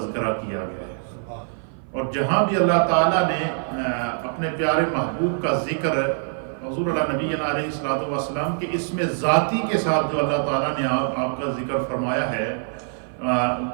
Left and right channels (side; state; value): left; silent; 57 dB below the other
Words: کیا گیا ہے۔ اور جہاں بھی اللہ تعالیٰ نے اپنے پیارے محبوب کا ذکر حضور اللہ نبی علیہ السلام کے اسم ذاتی کے ساتھ جو اللہ تعالیٰ نے آپ کا ذکر فرمایا ہے،